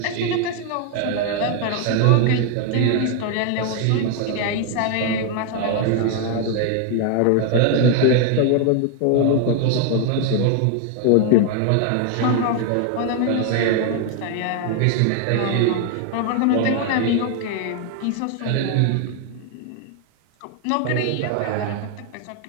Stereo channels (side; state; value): both; different; correlation 0.00